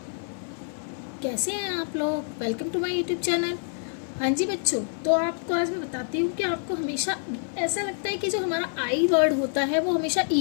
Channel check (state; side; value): silent; right; 60 dB below the other